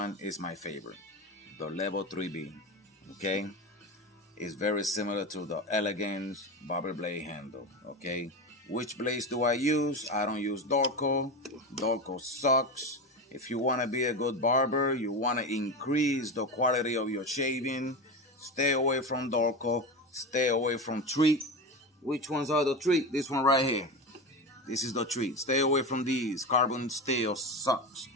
is my favorite, the Level 3B. Okay, it's very similar to the Elegance Barber blade handle. Okay, which blades do I use? I don't use Dorco. Dorco sucks. If you want to be a good barber, you want to increase the quality of your shaving, stay away from Dorco, stay away from Treat. Which ones are the Treat? This one right here. This is the Treat. Stay away from these. Carbon steel sucks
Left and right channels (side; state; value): both; normal; correlation 0.22